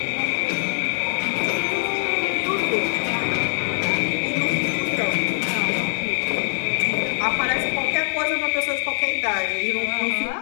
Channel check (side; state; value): right; silent; digital silence